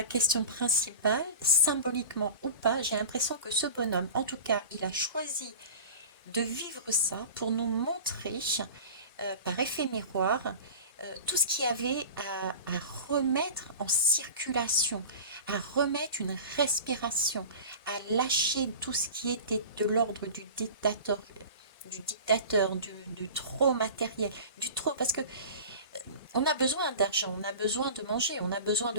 question principale, symboliquement ou pas, j'ai l'impression que ce bonhomme, en tout cas, il a choisi de vivre ça pour nous montrer, par effet miroir, tout ce qu'il y avait à remettre en circulation, à remettre une respiration, à lâcher tout ce qui était de l'ordre du trop matériel, du trop, parce que on a besoin d'argent, on a besoin de manger, on a besoin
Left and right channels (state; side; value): inverted; both; correlation -0.36